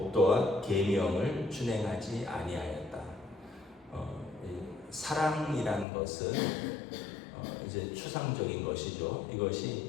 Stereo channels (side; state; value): right; drops out; at 5.9 s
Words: 계명을 준행하지 아니하였다. 사랑이라는 것은 이제 추상적인 것이죠.